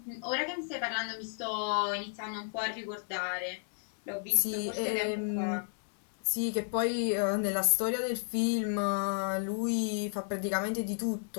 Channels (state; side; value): silent; right; digital silence